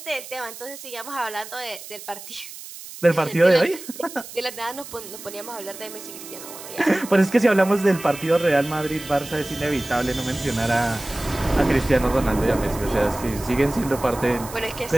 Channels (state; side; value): noise; right; hiss, 14 dB below the sound